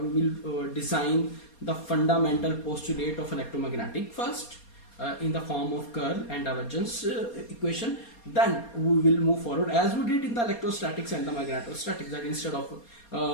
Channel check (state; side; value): late; right; 4.3 ms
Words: will design the fundamental postulate of electromagnetic first in the form of curl and divergence equation. Then we will move forward as we did in the electrostatics and the magnetostatics, that instead of